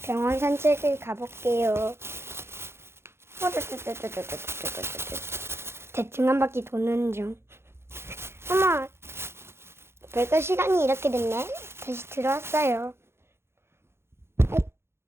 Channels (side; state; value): left; late; 0.12 ms